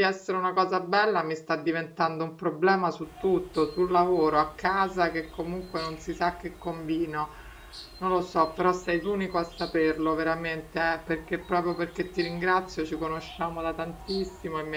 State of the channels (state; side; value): identical; both; correlation 1.00